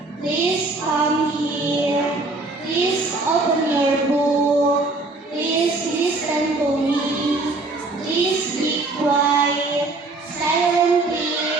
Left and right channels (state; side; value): quieter; left; 3.2 dB